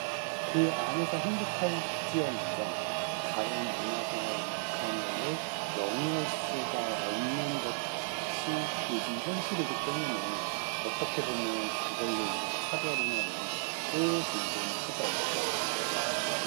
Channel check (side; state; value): left; silent; digital silence